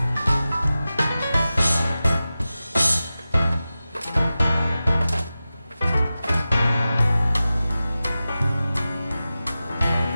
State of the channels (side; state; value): both; inverted; correlation -0.94